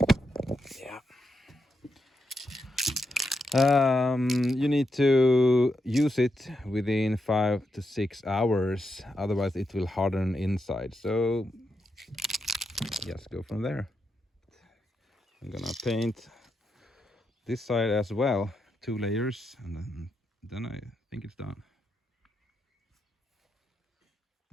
you need to use it within 5 to 6 hours, otherwise it will harden inside. So just go from there. I'm gonna paint this side as well, 2 layers, and then I think it's done.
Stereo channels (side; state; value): both; normal; correlation 0.84